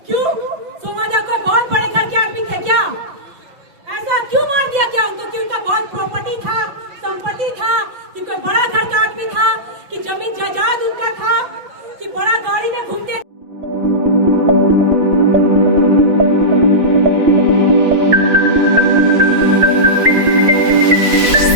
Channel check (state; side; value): late; left; 5.9 ms